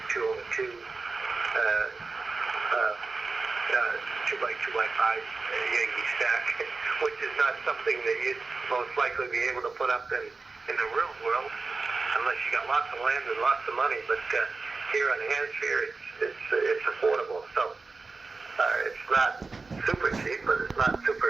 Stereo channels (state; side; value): quieter; left; 4.0 dB